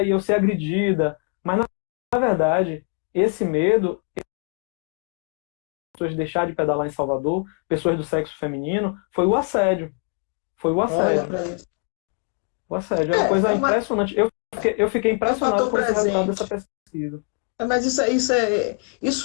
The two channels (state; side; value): quieter; right; 38.1 dB